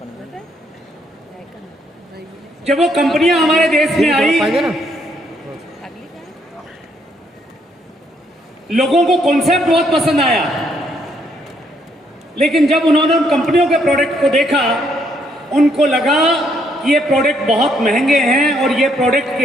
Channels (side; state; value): both; normal; correlation 0.71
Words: जब वो कंपनियां हमारे देश में आई, लोगों को कॉन्सेप्ट बहुत पसंद आया, लेकिन जब उन्होंने उन कंपनियों के प्रोडक्ट को देखा, उनको लगा कि ये प्रोडक्ट बहुत महंगे हैं और ये प्रोडक्ट